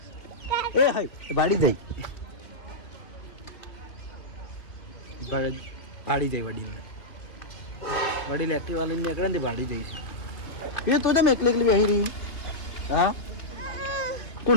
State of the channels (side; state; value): right; late; 2.5 ms